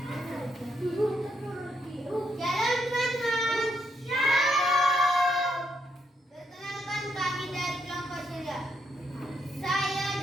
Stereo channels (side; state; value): both; normal; correlation 0.78